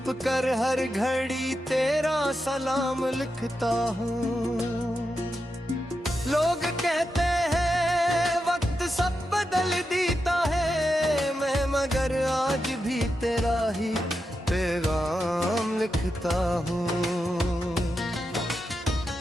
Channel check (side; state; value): both; normal; correlation 0.88